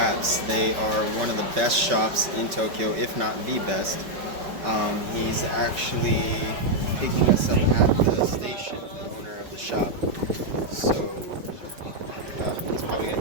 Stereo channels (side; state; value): left; late; 5.2 ms